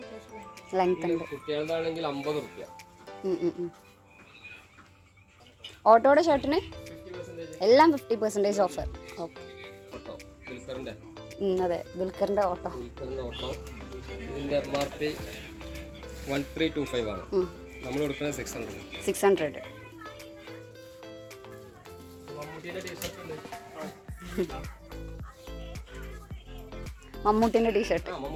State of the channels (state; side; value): identical; both; correlation 1.00